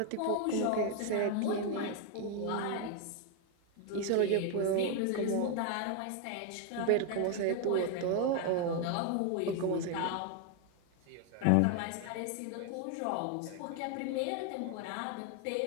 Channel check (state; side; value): different; both; correlation 0.01